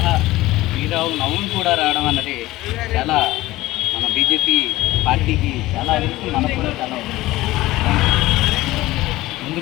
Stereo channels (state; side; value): quieter; right; 17.7 dB